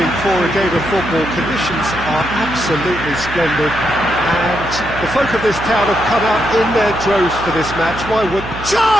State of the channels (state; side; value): noise; right; hum, 12 dB below the sound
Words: for a game of football. Conditions are absolutely splendid and the folk of this town have come out in their droves for this match. Why would...